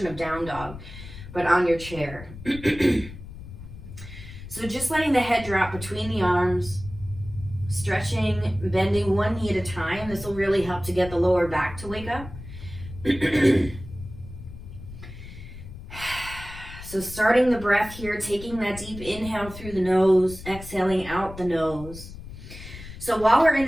of down dog, but on your chair. So just letting the head drop between the arms, stretching, bending one knee at a time. This will really help to get the lower back to wake up. So starting the breath here, taking that deep inhale through the nose, exhaling out the nose. So while we're in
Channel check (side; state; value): left; noise; rumble, 13 dB below the sound